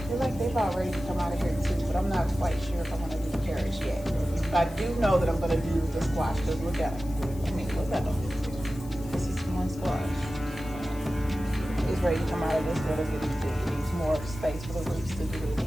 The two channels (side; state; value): left; noise; hiss, 21 dB below the sound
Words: feel like they're about ready to come out of here too, but I'm not quite sure if I'm gonna do the carrots yet. But I do know that I'm gonna do the squash, because look at them. I mean, look at them. This is one squash. It's ready to come out of this little bitty thing. It needs more space for the roots to do what it